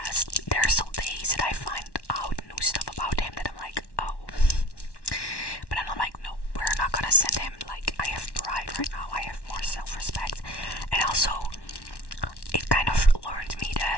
There are still days that I find out new stuff about him that I'm like, oh. But then I'm like, no, we're not gonna send him. Like, I have pride right now. I have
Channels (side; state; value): right; late; 1.1 ms